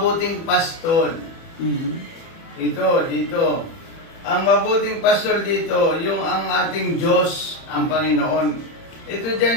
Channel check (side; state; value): right; late; 30 ms